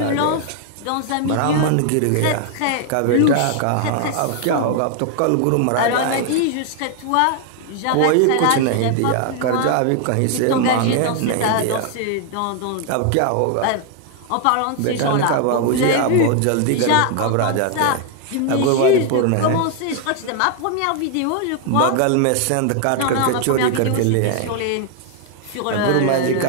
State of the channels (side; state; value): both; different; correlation 0.00